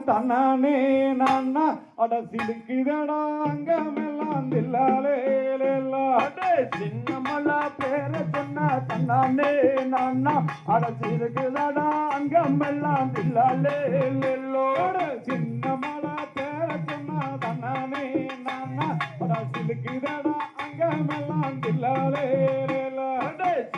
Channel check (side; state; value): both; identical; correlation 1.00